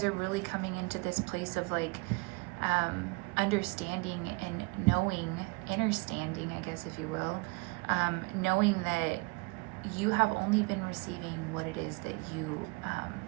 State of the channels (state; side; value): quieter; left; 28.0 dB